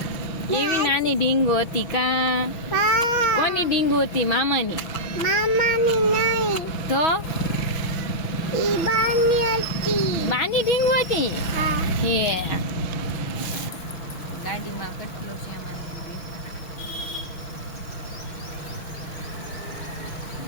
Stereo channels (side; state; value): right; late; 6.2 ms